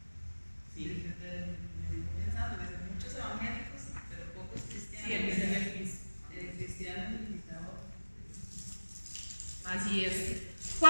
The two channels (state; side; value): inverted; both; correlation -1.00